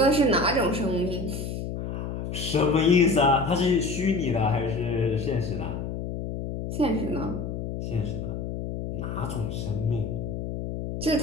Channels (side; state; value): left; noise; hum, 5 dB below the sound